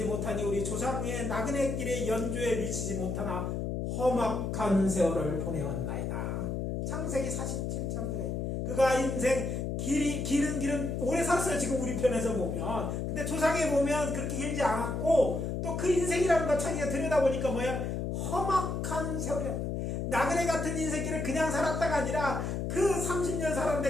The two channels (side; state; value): left; noise; hum, 2 dB below the sound